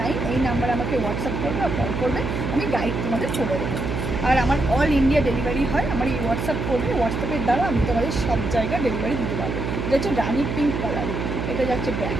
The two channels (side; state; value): right; noise; hum, 3 dB below the sound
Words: এই নাম্বারে আমাকে হোয়াটসঅ্যাপ করবে আর কল করবে, আমি গাইড তোমাদের করে দেবো। আর আমার অল ইন্ডিয়া ডেলিভারি হয়, আমার এই হোয়াটসঅ্যাপ করবে, হোয়াটসঅ্যাপের দ্বারা আমি তোমাদের সব জায়গায় ডেলিভারি দিতে পারবো। এটা হচ্ছে রানি পিঙ্ক কালার, এটা যাচ্ছে